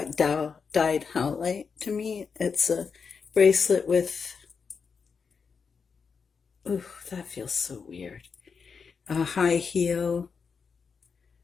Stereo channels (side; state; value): right; quieter; 5.7 dB